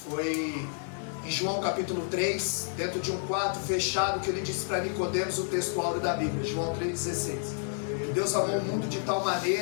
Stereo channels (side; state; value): right; silent; digital silence